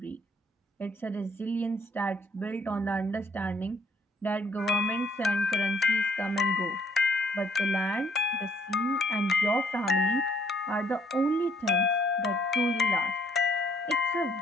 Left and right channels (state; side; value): normal; both; correlation 0.65